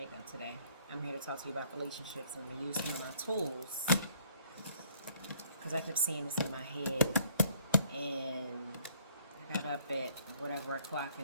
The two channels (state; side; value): inverted; both; correlation -0.60